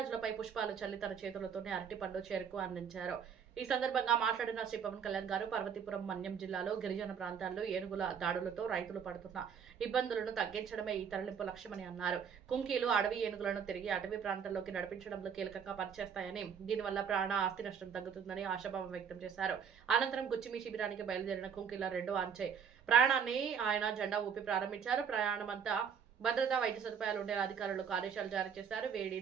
పుష్పాలు చల్లి తన చేతులతోనే అరటిపండు చెరుకు అందించారు. ఈ సందర్భంగా మాట్లాడిన శ్రీ పవన్ కళ్యాణ్ గారు పార్వతీపురం మన్యం జిల్లాలో గిరిజన ప్రాంతాల్లో ఏనుగుల దాడులతో రైతులు పడుతున్న ఇబ్బందులను తగ్గించడమే ఈ తరలింపు లక్ష్యమని అన్నారు. కుంకీలు అడవి ఏనుగులను తిరిగి అటవీ ప్రాంతాల్లోకి నడిపించడంలో కీలకంగా పనిచేస్తాయని, దీనివల్ల ప్రాణ ఆస్తి నష్టం తగ్గుతుందని ఆశాభావం వ్యక్తం చేశారు. అనంతరం గుచ్చిమి శిబిరానికి బయలుదేరిన కుంకీల 2వ అంచె ప్రాణాన్ని ఆయన జెండా ఊపి ప్రారంభించారు. ప్రయాణమంతా భద్రతా వైద్య సదుపాయాలు ఉండేలా అధికారులకు ఆదేశాలు జారీ చేశారు. వేడి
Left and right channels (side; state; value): left; quieter; 7.2 dB